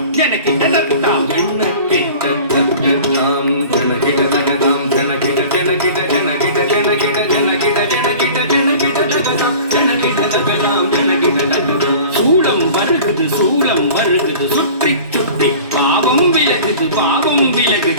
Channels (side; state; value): both; inverted; correlation -0.42